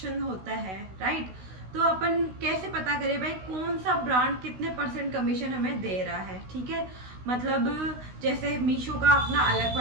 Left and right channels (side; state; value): left; late; 16 ms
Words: होता है, राइट, तो अपन कैसे पता करें भाई कौन सा ब्रांड कितने % कमीशन हमें दे रहा है। ठीक है, मतलब जैसे मीशो का अपना अलग